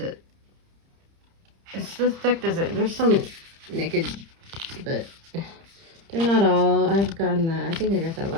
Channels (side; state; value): left; late; 30 ms